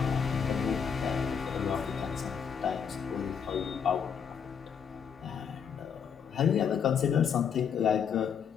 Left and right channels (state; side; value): quieter; right; 7.1 dB